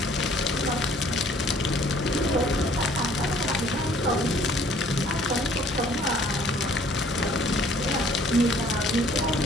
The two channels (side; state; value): both; normal; correlation 0.58